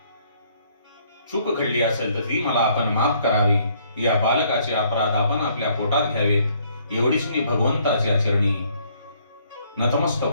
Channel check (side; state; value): both; inverted; correlation -0.66